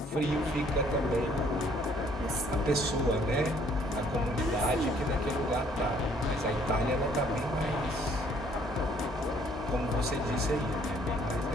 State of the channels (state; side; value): normal; both; correlation 0.62